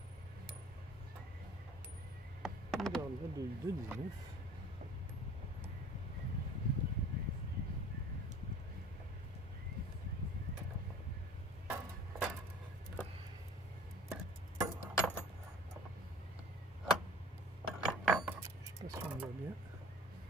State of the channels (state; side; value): normal; both; correlation 0.45